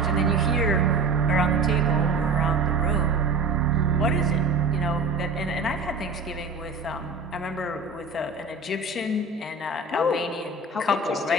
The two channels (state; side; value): quieter; left; 3.6 dB